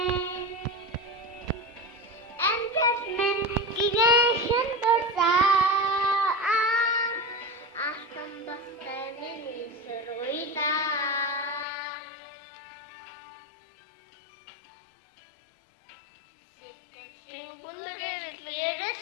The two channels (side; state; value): right; drops out; at 11.7 s